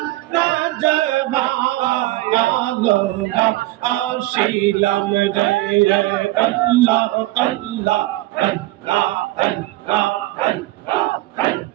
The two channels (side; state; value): left; quieter; 18.0 dB